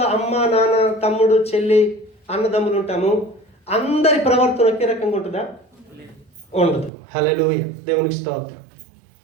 అమ్మ, నాన్న, తమ్ముడు, చెల్లి, అన్నదమ్ములు ఉంటాము. అందరి ప్రవర్తన ఒకే రకంగా ఉంటుందా? ఉండదు. హల్లెలూయా. దేవునికి స్తోత్రం.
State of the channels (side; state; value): left; drops out; at 6.9 s